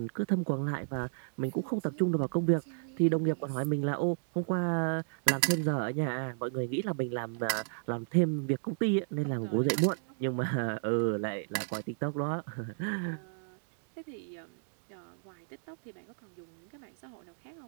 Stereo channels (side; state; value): left; silent; digital silence